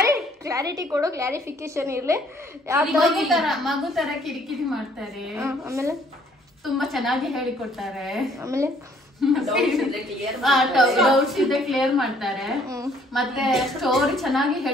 ಕ್ಲಾರಿಟಿ ಕೊಡು, ಕ್ಲಾರಿಫಿಕೇಶನ್ ಇರ್ಲಿ. ಮಗು ತರ ಕಿರಿಕಿರಿ ಮಾಡ್ತಾರೆ. ಆಮೇಲೆ ತುಂಬಾ ಚೆನ್ನಾಗಿ ಹೇಳಿಕೊಡ್ತಾರೆ. ಆಮೇಲೆ ಡೌಟ್ಸ್ ಇದ್ರೆ ಕ್ಲಿಯರ್ ಮಾಡ್ತಾರೆ. ಮತ್ತೆ ಸ್ಟೋರಿ ಚೆನ್ನಾಗಿ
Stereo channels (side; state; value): both; normal; correlation 0.62